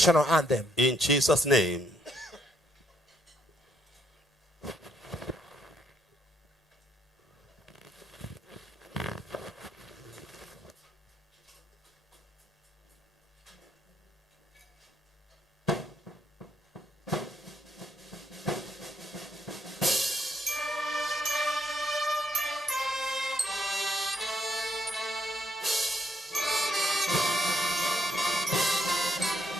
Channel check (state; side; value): normal; both; correlation 0.74